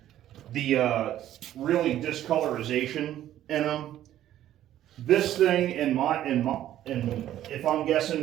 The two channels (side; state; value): left; quieter; 12.4 dB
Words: The really discolorization in them. This thing, if I'm guessing,